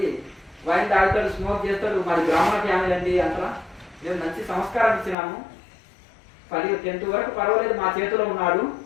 వైన్ తాగుతాడు, స్మోక్ చేస్తాడు, మరి బ్రాహ్మణ ఫ్యామిలీ అండి అంటారా. మేము మంచి సంస్కారం ఇచ్చినాము, 10th వరకు పర్వాలేదు, మా చేతిలో ఉన్నాడు,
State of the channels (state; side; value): drops out; right; at 5.2 s